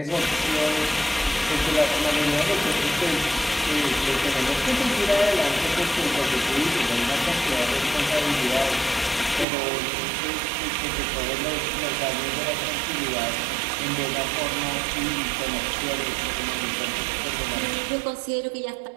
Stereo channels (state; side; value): drops out; left; at 9.5 s